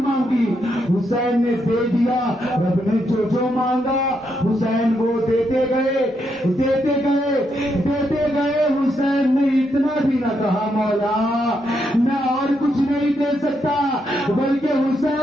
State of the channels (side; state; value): both; normal; correlation 0.79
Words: مانگی, حسین نے دے دیا. رب نے جو مانگا حسین وہ دیتے گئے دیتے گئے دیتے گئے. حسین نے اتنا بھی نہ کہا مولا میں اور کچھ نہیں دے سکتا, بلکہ